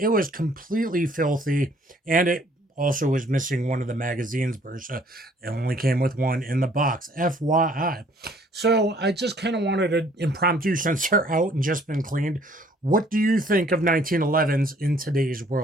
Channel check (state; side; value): normal; both; correlation 0.60